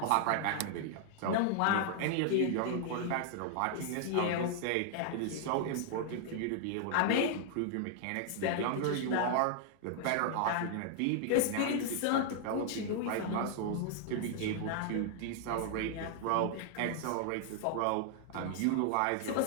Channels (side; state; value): both; different; correlation 0.00